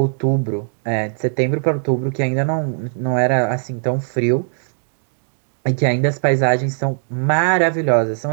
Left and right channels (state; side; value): silent; left; digital silence